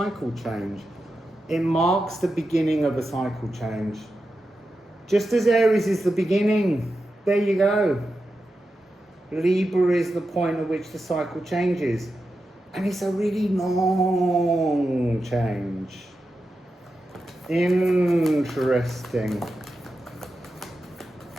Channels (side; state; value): both; normal; correlation 0.90